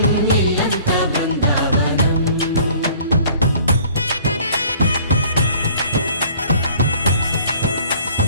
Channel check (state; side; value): inverted; both; correlation -0.53